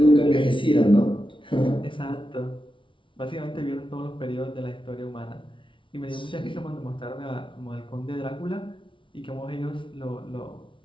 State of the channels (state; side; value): late; right; 0.25 ms